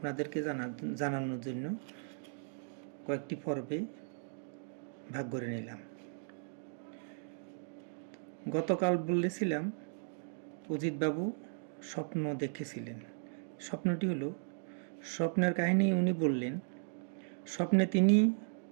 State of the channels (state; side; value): silent; left; digital silence